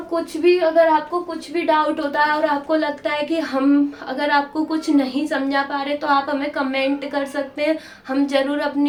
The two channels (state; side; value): identical; both; correlation 1.00